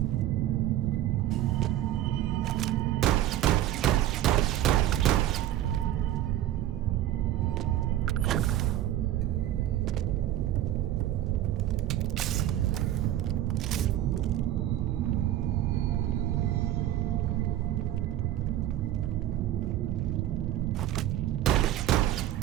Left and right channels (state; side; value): quieter; left; 12.9 dB